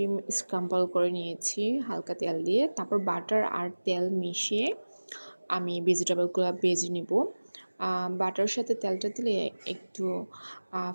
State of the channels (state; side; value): inverted; both; correlation -1.00